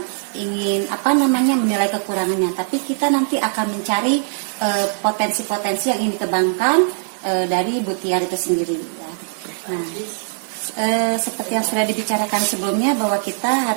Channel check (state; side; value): silent; left; digital silence